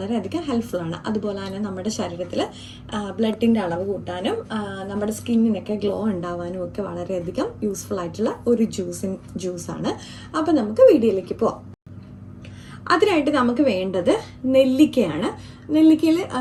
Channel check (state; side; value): identical; both; correlation 1.00